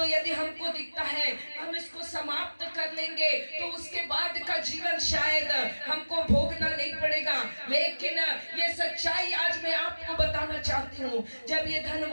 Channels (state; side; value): inverted; both; correlation -1.00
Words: यदि हमको दिखता है हम इसको समाप्त कर लेंगे तो उसके बाद का जीवन शायद हमको भोगना नहीं पड़ेगा। लेकिन ये सच्चाई आज मैं आपको बताना चाहती हूँ। जब ये